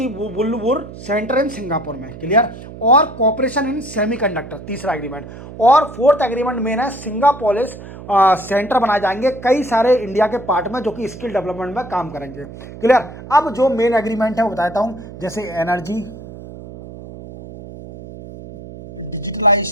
सेंटर इन सिंगापुर में। क्लियर? और कॉपरेशन इन सेमीकंडक्टर, तीसरा एग्रीमेंट। और फोर्थ एग्रीमेंट मेन है, सिंगापोलिस सेंटर बनाए जाएंगे कई सारे इंडिया के पार्ट में, जो कि स्किल डेवलपमेंट में काम करेंगे। क्लियर? अब जो मेन एग्रीमेंट है वो बताता हूं, जैसे energy,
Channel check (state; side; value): noise; right; hum, 14 dB below the sound